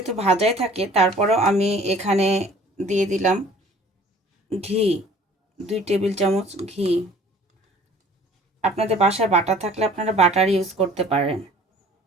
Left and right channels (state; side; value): normal; both; correlation 0.51